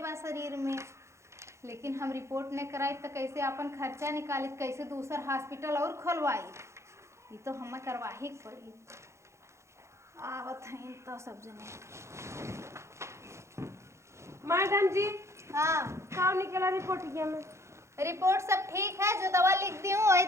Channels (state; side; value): late; left; 0.14 ms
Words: बा शरीर में। लेकिन हम रिपोर्ट नहीं कराई तो कैसे अपन खर्चा निकाली, कैसे दूसरा हॉस्पिटल और खोलवाई? ये तो हमें करवा ही पड़ी। आवत हैं तो सब जने। मैडम जी हाँ का निकला रिपोर्ट ये में? रिपोर्ट सब ठीक है, जो दवा लिख दी हूँ वही